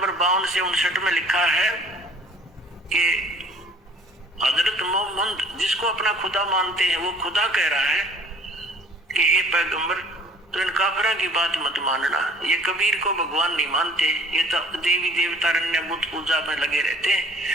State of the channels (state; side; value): normal; both; correlation 0.54